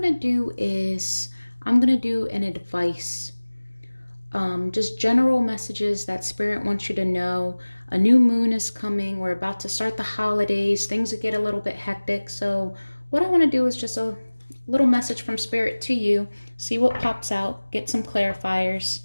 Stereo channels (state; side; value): inverted; both; correlation -1.00